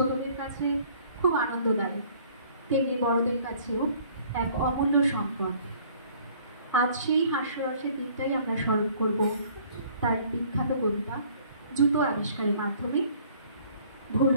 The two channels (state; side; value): inverted; both; correlation -0.56